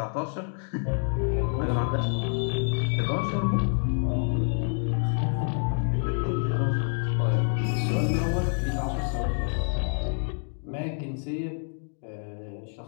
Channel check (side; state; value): right; silent; 60 dB below the other